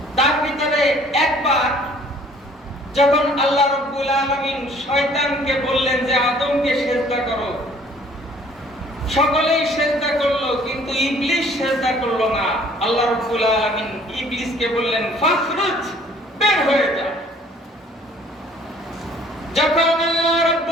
তার ভিতরে একবার যখন আল্লাহ রাব্বুল আলামিন শয়তানকে বললেন যে আদমকে সিজদা করো, সকলেই সিজদা করলো, কিন্তু ইবলিস সিজদা করলো না। আল্লাহ রাব্বুল আলামিন ইবলিসকে বললেন ফাখরুজ, বের হয়ে যা। যখন আল্লাহ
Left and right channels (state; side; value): normal; both; correlation 0.56